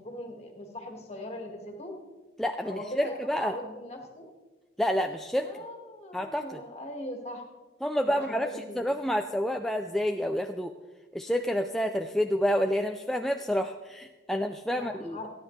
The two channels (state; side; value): normal; both; correlation 0.82